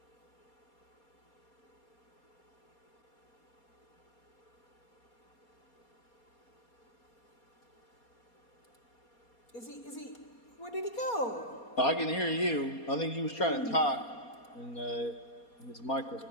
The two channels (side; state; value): right; late; 4.2 ms